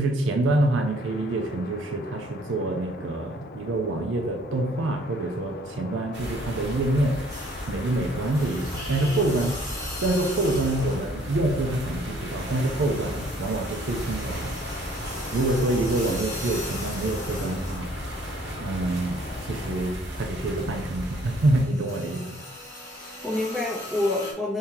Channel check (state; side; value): normal; both; correlation 0.61